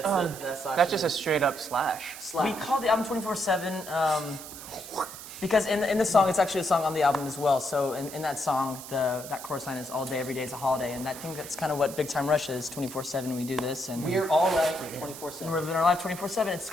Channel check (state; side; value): noise; right; hiss, 13 dB below the sound